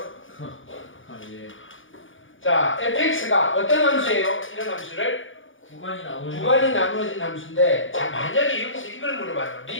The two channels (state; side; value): late; right; 0.57 ms